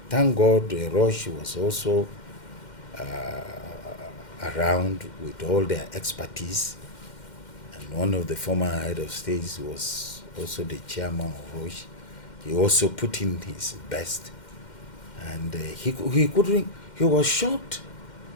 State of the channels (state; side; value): late; right; 2.1 ms